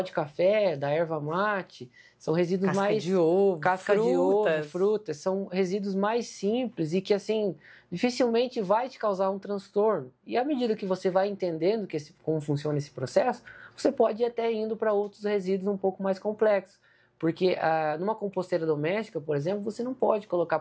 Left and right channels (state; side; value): identical; both; correlation 1.00